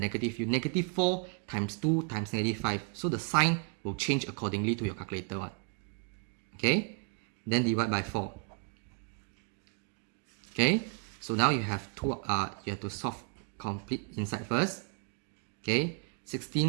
You -4 times 2 times -5. So the sign will change accordingly to your calculator one. Okay? Then divide by 4. Okay? So now you have you have to solve complete inside first. Okay?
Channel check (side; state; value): left; quieter; 38.6 dB